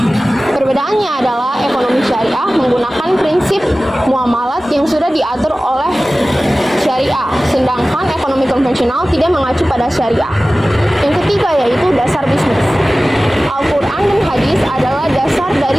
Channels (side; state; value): both; normal; correlation 0.97